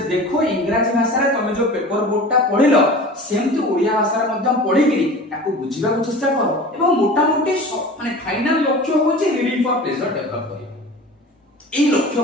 देखो इंग्रजी भाषा रे तमे जो पेपर बोर्डटा पढिलो सेमति ओडिया भाषा रे मध्यम पढिकिरी ताको बुझिबा को चेष्टा करो एवं मोटा मोटी माने फाइनल लक्ष्य होछि रीडिंग फॉर प्लेजर डेवलप करिबा ए लक्ष्य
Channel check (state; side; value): normal; both; correlation 0.38